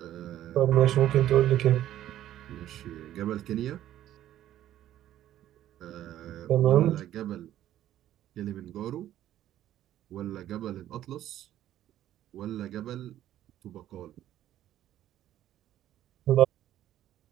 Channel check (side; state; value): left; quieter; 12.5 dB